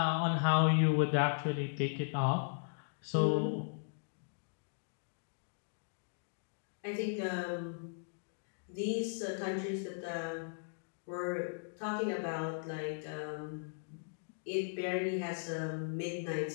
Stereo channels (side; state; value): right; silent; digital silence